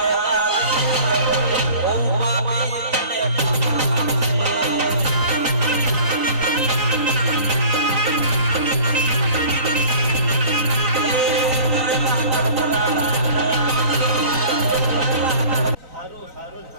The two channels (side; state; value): left; late; 3.9 ms